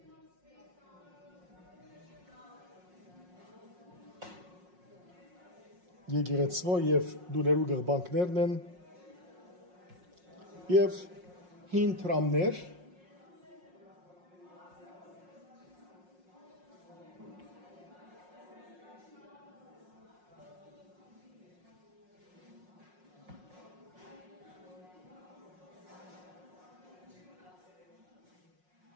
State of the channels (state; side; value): late; left; 5.5 ms